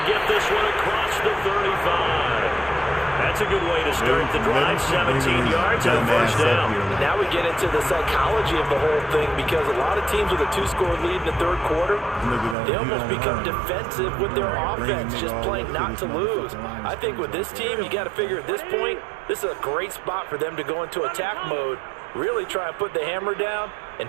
get this one across the 35. That's a good way to start the drive. 17 yards and a first down. Now we get into the psychology of the whole thing, because a lot of teams with a 2-score lead in the 3rd quarter, they almost become defensive with their offense, just playing not to lose. I think with this team, you got to figure at this point, this is a great spot for them to go into attack mode, really try and put the hammer down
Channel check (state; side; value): drops out; left; at 12.6 s